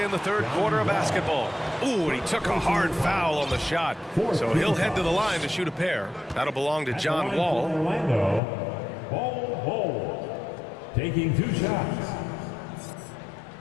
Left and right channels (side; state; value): right; drops out; at 8.4 s